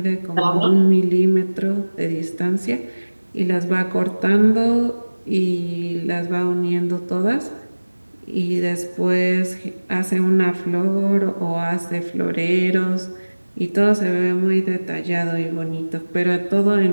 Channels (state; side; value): inverted; both; correlation -1.00